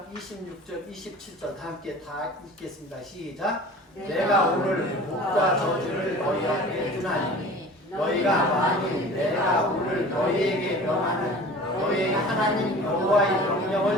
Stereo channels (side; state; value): both; normal; correlation 0.41